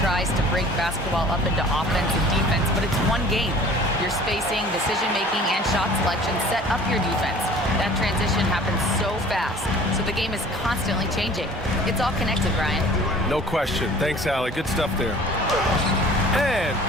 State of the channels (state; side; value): normal; both; correlation 0.48